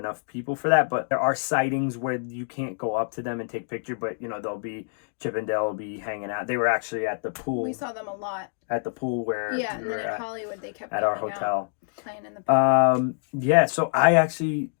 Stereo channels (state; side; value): silent; right; digital silence